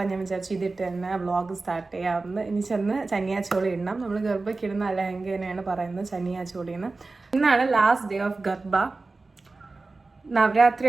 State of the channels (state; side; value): quieter; left; 3.6 dB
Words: ഞാൻ വിചാരിച്ചു ഇതിട്ട് തന്നെ വ്ളോഗ് സ്റ്റാർട്ട് ചെയ്യാമെന്ന്. ഇനി ചെന്ന് ചനിയാച്ചോളി ഇടണം. നമ്മൾ ഗർഭയ്ക്ക് ഇടുന്ന ലഹങ്കേനെയാണ് പറയുന്നത് ചനിയാച്ചോളിന്ന്. ഇന്നാണ് ലാസ്റ്റ് ഡേ ഓഫ് ഗർഭ.